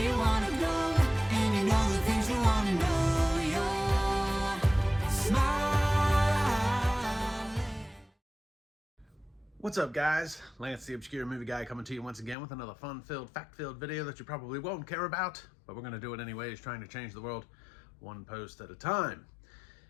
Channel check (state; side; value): drops out; right; at 12.4 s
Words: you wanna go, and you know the things you wanna know, you're smiling. What's up, guys? Lance the Obscure Movie Guy coming to you once again with another fun-filled, fact-filled video that you probably won't care about, but we're going to do it anyways, trying to change the world one post at a time.